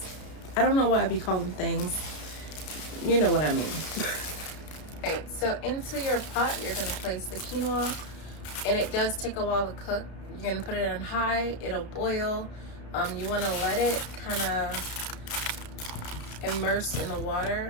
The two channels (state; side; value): late; right; 33 ms